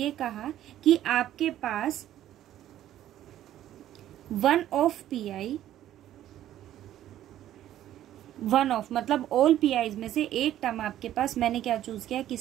कहा कि आपके पास one of pi, one of मतलब ऑल पीआईज में से एक टर्म आपके पास, मैंने क्या चूज किया,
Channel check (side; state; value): left; quieter; 12.4 dB